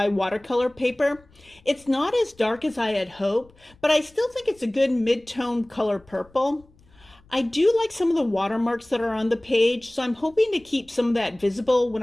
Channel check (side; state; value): left; noise; rumble, 29 dB below the sound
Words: watercolor paper. It's not as dark as I had hoped, but I still think it's a good mid-tone color purple. I do like some of the watermarks that are on the page, so I'm hoping to keep some of that visible when